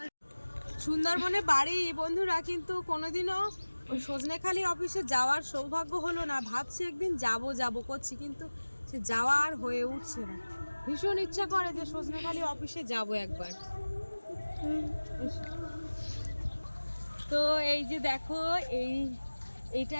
সুন্দরবনে বাড়ি বন্ধুরা, কিন্তু কোনোদিনও ওই সজনেখালি অফিসে যাওয়ার সৌভাগ্য হলো না। ভাবছি একদিন যাব করছি, কিন্তু সে যাওয়া আর হয়ে উঠছে না। ভীষণ ইচ্ছা করে যে সজনেখালি অফিসে যাব একবার। তো এই যে দেখো, এইটা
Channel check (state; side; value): inverted; both; correlation -1.00